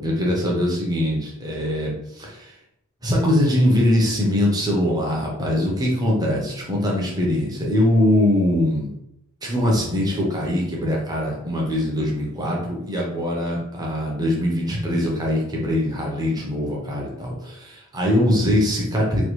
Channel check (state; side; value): normal; both; correlation 0.67